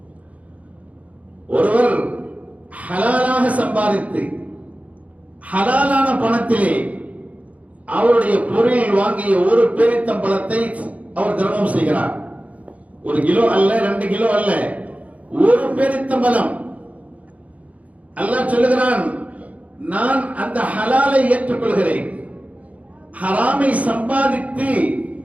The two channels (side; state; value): left; late; 0.069 ms